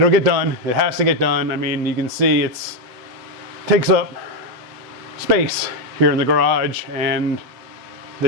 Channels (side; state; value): left; late; 8.0 ms